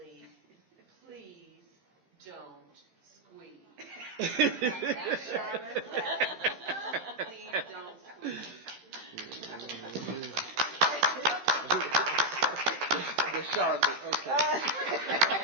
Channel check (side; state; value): left; late; 15 ms